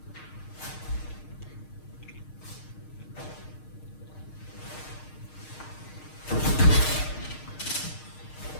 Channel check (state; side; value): late; right; 6.5 ms